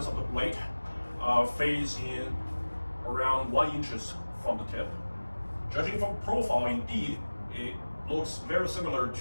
of the blade, phase in around 1 inch from the tip. Judging from profile, indeed, it looks very similar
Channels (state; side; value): inverted; both; correlation -1.00